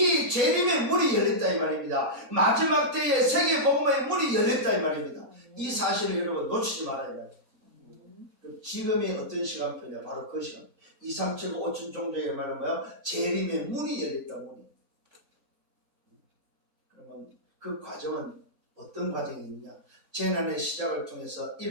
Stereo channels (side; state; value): both; normal; correlation -0.12